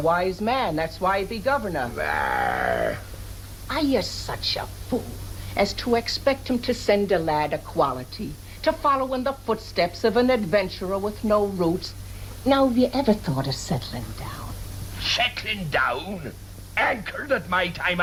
man. That's why he be governor. There. Are you such a fool as to expect him to send a lad of quality, to follow in the footsteps of an adventurer with no roots? Now, have you ever thought of settling down? Settling down? Anchored at my time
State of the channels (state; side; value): identical; both; correlation 1.00